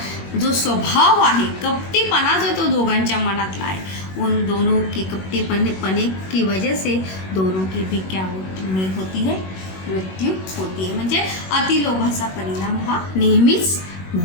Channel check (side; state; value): right; late; 21 ms